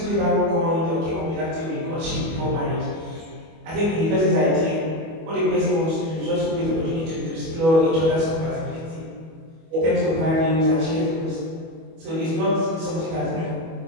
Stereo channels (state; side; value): late; left; 25 ms